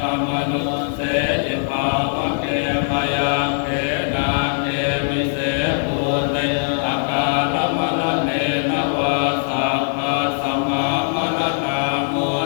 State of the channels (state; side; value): silent; right; digital silence